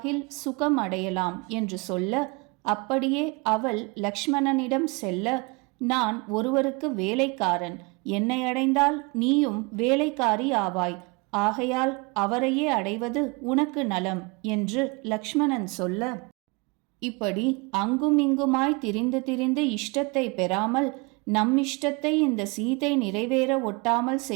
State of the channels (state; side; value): quieter; left; 28.6 dB